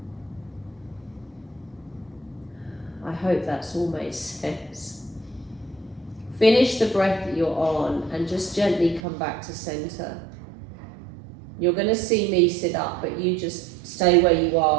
I hope that's all made sense. Finish the breath that you're on and just gently come back to center. You're going to see me sit up, but you just stay where you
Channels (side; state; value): left; drops out; at 9.0 s